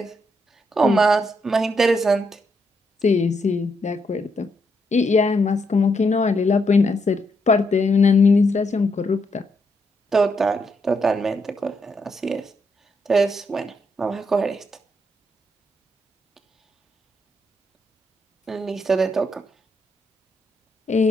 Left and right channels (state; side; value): normal; both; correlation 0.78